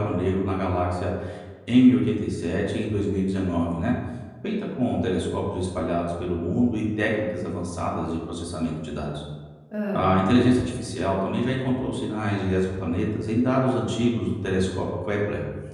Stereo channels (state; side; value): identical; both; correlation 1.00